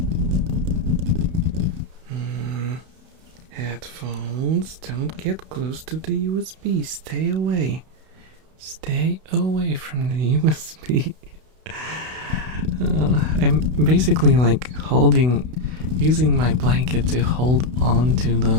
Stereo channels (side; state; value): left; late; 32 ms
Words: Headphones, don't get close to the USB. Stay away. Stay away from the USB. I'm basically like using my blanket to hold on to